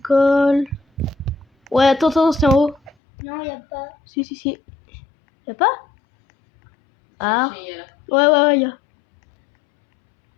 Ouais, attends, c'est en haut. Non, il n'y a pas. Si. Y'a pas? Ah. J'ai là. Ouais, y'a.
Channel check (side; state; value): right; drops out; at 3.0 s